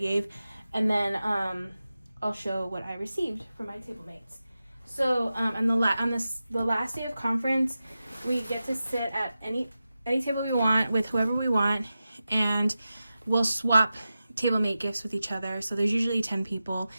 and then I'll show what I received from my Tablemates. So on the last day of conference, we get to sit at any table we want with whoever we want, and we'll swap Tablemate gifts with each other. So there's usually 10 people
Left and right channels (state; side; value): inverted; both; correlation -0.93